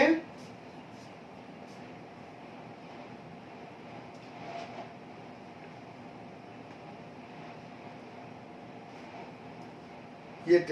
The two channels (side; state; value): both; identical; correlation 1.00